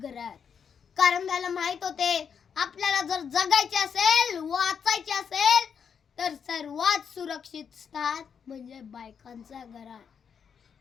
कारण त्याला माहित होते आपल्याला जर जगायचे असेल, वाचायचे असेल तर सर्वात सुरक्षित स्थान म्हणजे बायकांच्या घरात.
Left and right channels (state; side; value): quieter; right; 7.0 dB